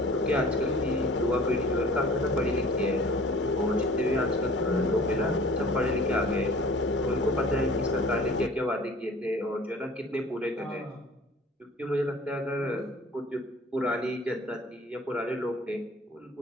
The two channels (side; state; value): both; normal; correlation 0.47